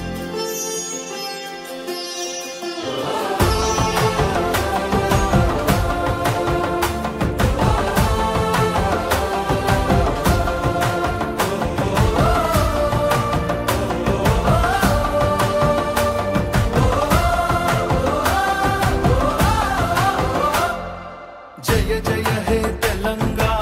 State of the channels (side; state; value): both; identical; correlation 1.00